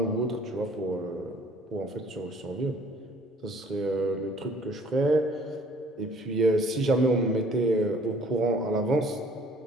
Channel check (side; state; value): both; normal; correlation 0.55